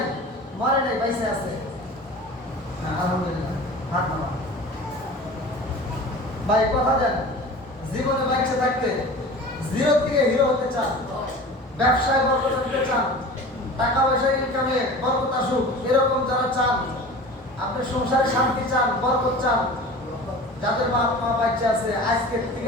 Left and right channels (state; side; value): normal; both; correlation 0.38